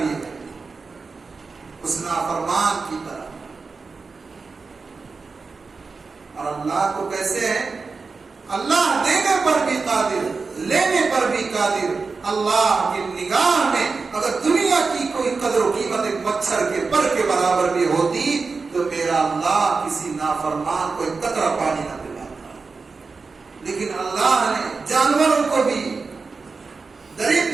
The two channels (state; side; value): quieter; left; 4.4 dB